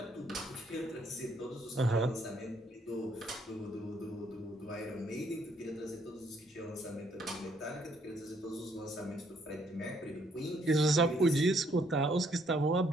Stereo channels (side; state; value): both; normal; correlation 0.69